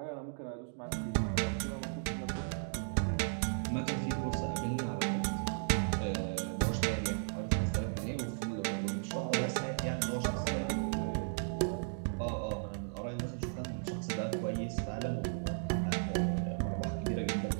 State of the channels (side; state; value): left; silent; digital silence